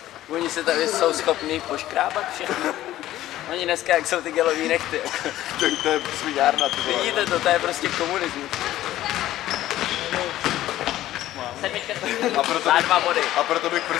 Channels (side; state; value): right; quieter; 14.1 dB